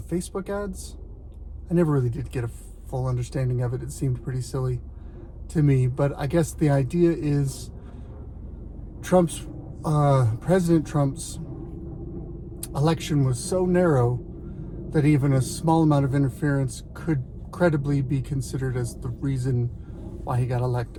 Facebook ads. I never really did get a full understanding of it. It seemed pretty silly to me, but I guess the idea is President Trump's election was so narrow that even a small amount of interference could credibly be considered as the reason why he got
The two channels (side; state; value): both; identical; correlation 1.00